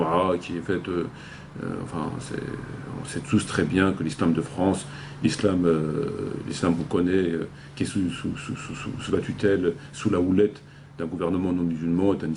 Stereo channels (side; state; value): both; identical; correlation 1.00